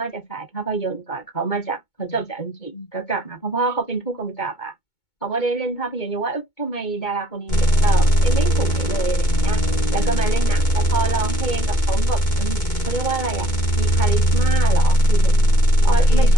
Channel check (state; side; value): late; right; 2.2 ms